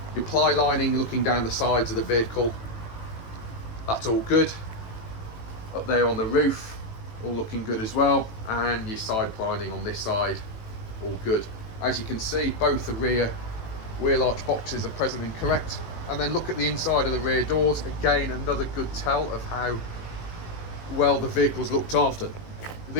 Your ply lining looking down the sides of the vehicle, that's all good. Up there on the roof, all looking good as well, and your side plining on this side, all good. As you can see, both the rear wheel arch boxes are present and correct. And then look at the inside of the rear doors. Again, another good tell of how well the vehicle's looked after.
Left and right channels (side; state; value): right; late; 18 ms